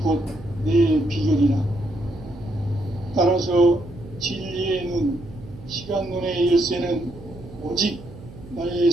곧 내 비결이라. 따라서 진리의 눈, 시간론의 열쇠는 오직 나의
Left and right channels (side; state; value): right; noise; hum, 17 dB below the sound